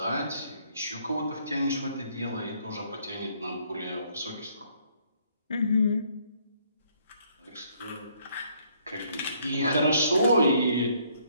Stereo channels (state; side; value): inverted; both; correlation -0.66